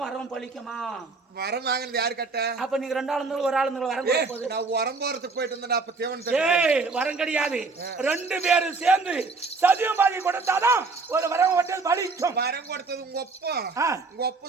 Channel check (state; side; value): quieter; left; 4.1 dB